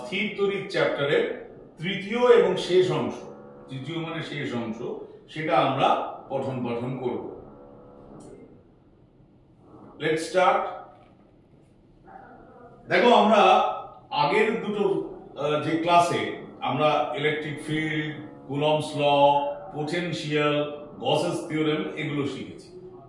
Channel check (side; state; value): both; identical; correlation 1.00